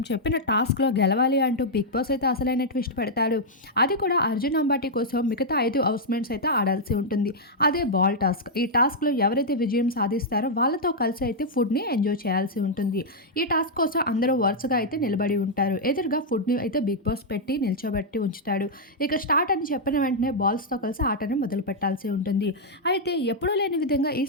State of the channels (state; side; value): normal; both; correlation -0.05